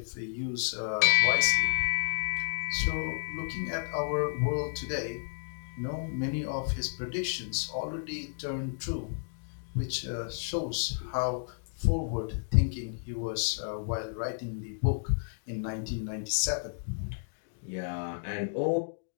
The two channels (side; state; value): right; silent; digital silence